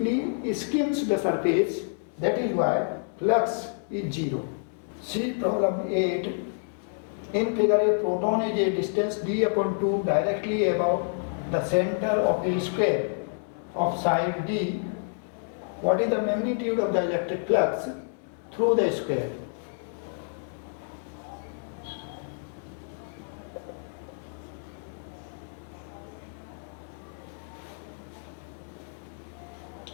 skims the surface. That is why flux is 0. See problem 8. In figure, a proton is a distance d upon 2 directly above the center of the square of side d. What is the magnitude of the electric flux through the square?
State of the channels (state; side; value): silent; right; 59 dB below the other